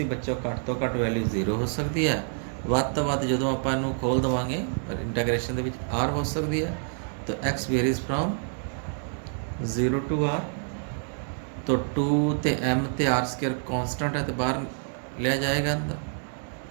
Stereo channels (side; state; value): left; silent; 60 dB below the other